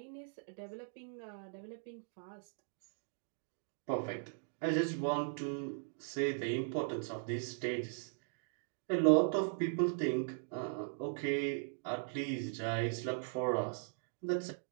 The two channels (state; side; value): silent; left; digital silence